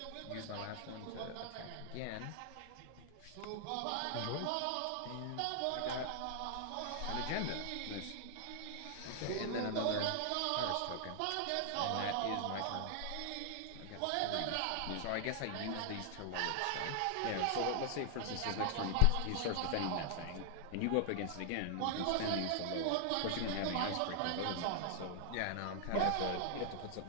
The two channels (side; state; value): both; different; correlation 0.00